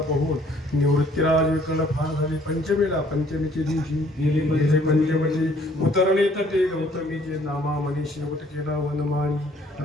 बघून निवृत्तीराज विकल फार झाले पंचमीच्या दिवशी गेले पंचमीची उतरले तटे गौतमीचे नामा मनी शेवट केला वनमाळी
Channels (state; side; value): normal; both; correlation 0.60